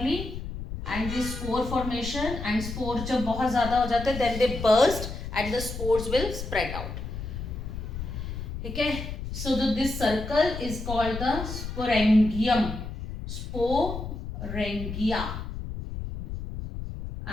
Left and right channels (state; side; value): noise; left; rumble, 7 dB below the sound